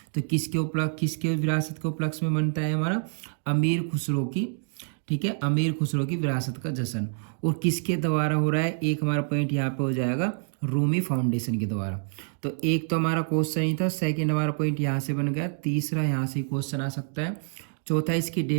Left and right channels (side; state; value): left; silent; digital silence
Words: तो किसके विरासत के उपलक्ष्य में मनता है हमारा, अमीर खुसरो की। ठीक है, अमीर खुसरो की विरासत का जश्न। और किसके द्वारा हो रहा है, एक हमारा पॉइंट यहाँ पे हो जाएगा रूमी फाउंडेशन के द्वारा। तो एक तो हमारा क्वेश्चन ही था, सेकंड हमारा पॉइंट यहाँ से बन गया, तीसरा यहाँ से क्वेश्चन आ सकता है, चौथा इसकी